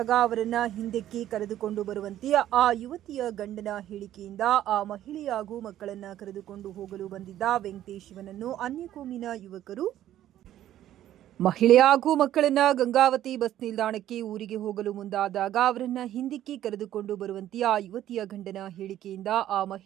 ಅವರನ್ನ ಹಿಂದಕ್ಕೆ ಕರೆದುಕೊಂಡು ಬರುವಂತೆ ಆ ಯುವತಿಯ ಗಂಡನ ಹೇಳಿಕೆಯಿಂದ ಆ ಮಹಿಳೆ ಹಾಗೂ ಮಕ್ಕಳನ್ನ ಕರೆದುಕೊಂಡು ಹೋಗಲು ಬಂದಿದ್ದ ವೆಂಕಟೇಶ್ ಇವನನ್ನು ಅನ್ಯಕೋಮಿನ ಯುವಕರು ಮಹಿಳೆ ಹಾಗೂ ಮಕ್ಕಳನ್ನ ಗಂಗಾವತಿ ಬಸ್ ನಿಲ್ದಾಣಕ್ಕೆ ಊರಿಗೆ ಹೋಗಲು ಮುಂದಾದಾಗ ಅವರನ್ನ ಹಿಂದಕ್ಕೆ ಕರೆದುಕೊಂಡು ಬರುವಂತೆ ಆ ಯುವತಿಯ ಗಂಡನ ಹೇಳಿಕೆಯಿಂದ ಆ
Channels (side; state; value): left; quieter; 12.4 dB